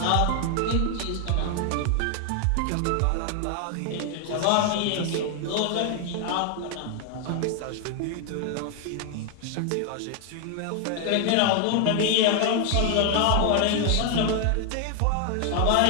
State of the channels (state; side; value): different; both; correlation 0.00